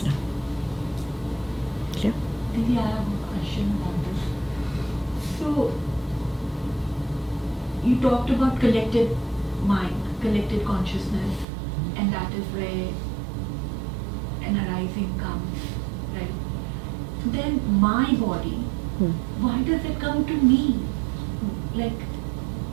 now. Clear? Maybe I have a question on this. So, you talked about collective mind, collective consciousness, and that is where an arising comes, right? Then my body, why does it come to me? Like,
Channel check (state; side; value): drops out; left; at 11.5 s